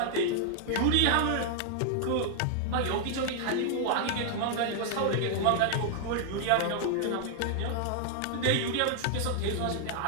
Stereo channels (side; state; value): both; different; correlation 0.00